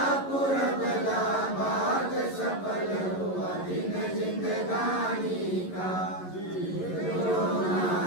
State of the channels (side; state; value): right; late; 11 ms